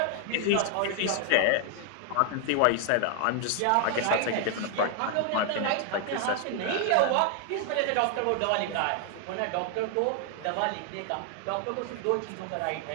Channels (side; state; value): both; different; correlation 0.00